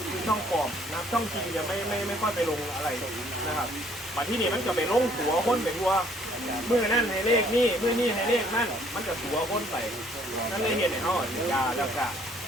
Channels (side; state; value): both; normal; correlation 0.62